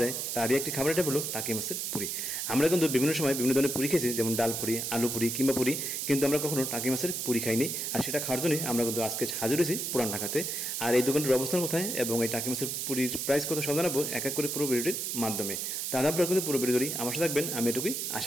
যায়। তারই একটি খাবার আইটেম হলো টাকি মাছের পুরি। আমরা কিন্তু বিভিন্ন সময় বিভিন্ন ধরনের পুরি খেয়েছি, যেমন ডাল পুরি, আলু পুরি কিংবা পুরি, কিন্তু আমরা কখনো টাকি মাছের পুরি খাইনি। আর সেটা খাওয়ার জন্যই আমরা কিন্তু আজকে হাজির হয়েছি পুরান ঢাকাতে। আর এই দোকানটির অবস্থান কোথায় এবং এই টাকি মাছের পুরির প্রাইস কত সব জানাবো এক এক করে পুরো ভিডিওটির মাধ্যমে। তাহলে আপনারা কিন্তু পুরো ভিডিও জুড়েই আমার সাথে থাকবেন, আমি এটুকুই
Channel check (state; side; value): noise; right; hiss, 2 dB below the sound